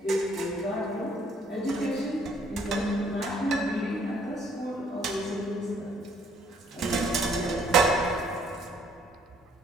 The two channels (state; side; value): normal; both; correlation 0.63